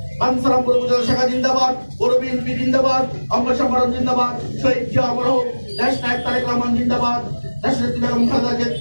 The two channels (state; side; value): inverted; both; correlation -1.00